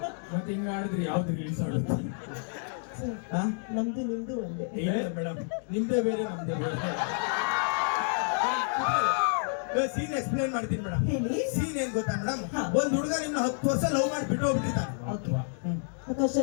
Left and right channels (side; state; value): right; silent; 58 dB below the other